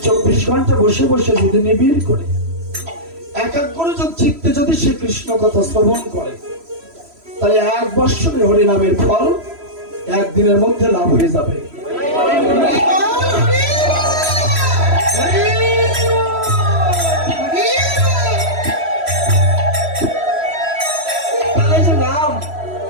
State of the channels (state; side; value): late; left; 3.0 ms